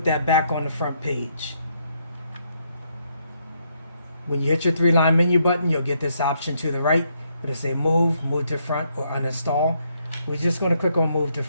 that back on the front page. When you hit your 3-line menu button, you'll get this option to the right. It'll say move to front, or uninstall. We're just going to click on move to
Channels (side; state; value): both; inverted; correlation -0.74